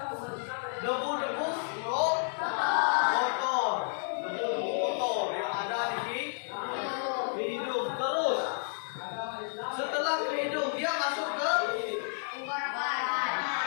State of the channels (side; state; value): right; silent; digital silence